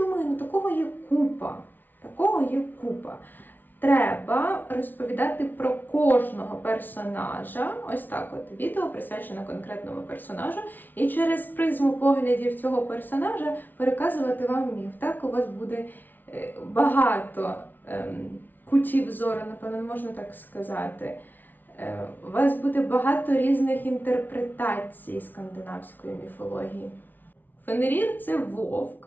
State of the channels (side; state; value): right; late; 0.087 ms